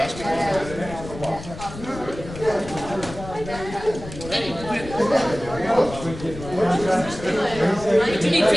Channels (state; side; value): noise; left; rumble, 12 dB below the sound